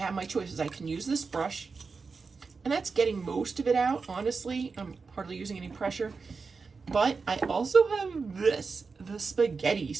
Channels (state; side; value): quieter; left; 4.7 dB